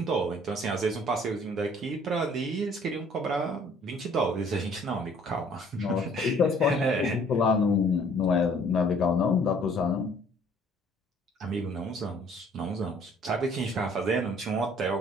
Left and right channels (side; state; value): both; normal; correlation 0.58